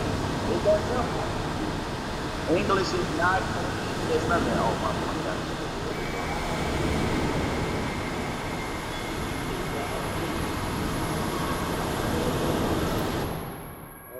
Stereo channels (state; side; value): identical; both; correlation 1.00